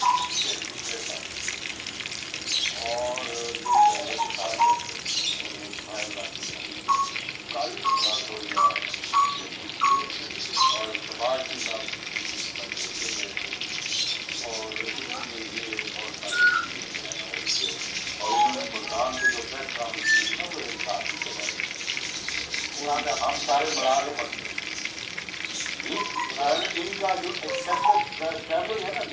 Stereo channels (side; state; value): both; identical; correlation 1.00